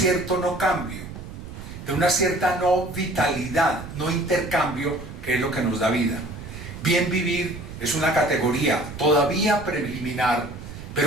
no cambio, de una cierta no vitalidad, no intercambio, que es lo que nos da vida. Bien vivir es una categoría todavía preliminar,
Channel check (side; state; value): right; noise; rumble, 12 dB below the sound